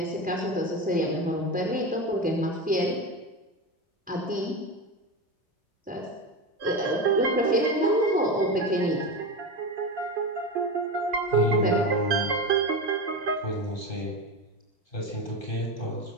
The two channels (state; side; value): normal; both; correlation 0.21